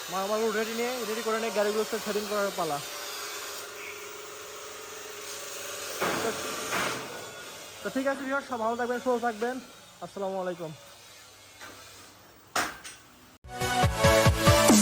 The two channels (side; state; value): both; identical; correlation 1.00